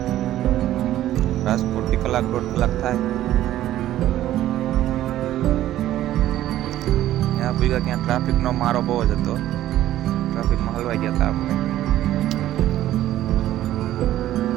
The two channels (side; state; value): left; quieter; 13.4 dB